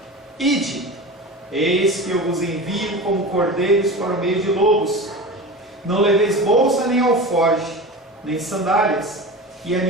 Ide, eis que eu vos envio como cordeiros para o meio de lobos. Não leveis bolsa nem alforje, nem sandálias, e a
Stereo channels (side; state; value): both; normal; correlation 0.30